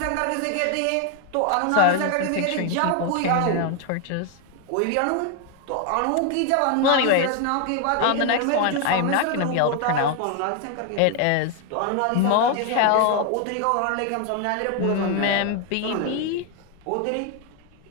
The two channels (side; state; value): both; different; correlation 0.01